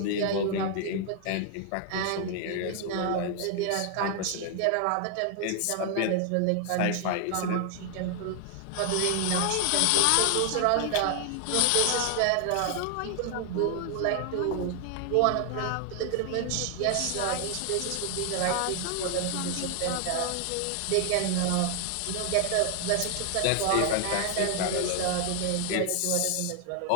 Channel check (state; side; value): different; both; correlation 0.00